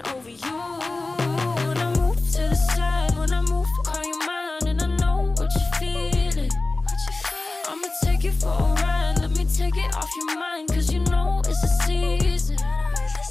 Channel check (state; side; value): quieter; right; 3.2 dB